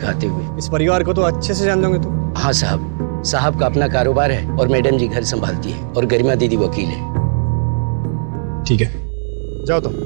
आते हुए। इस परिवार को तो अच्छे से जान दोगे तुम? हाँ साहब, साहब का अपना कारोबार है और मैडम जी घर संभालती है और गरिमा दीदी वकील है। ठीक है, जाओ तुम।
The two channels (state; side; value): silent; left; digital silence